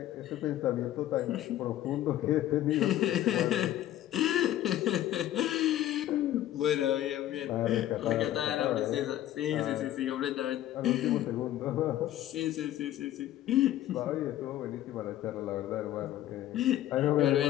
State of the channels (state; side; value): quieter; right; 13.0 dB